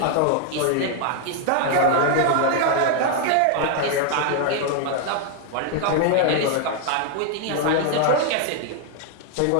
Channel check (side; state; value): both; different; correlation 0.00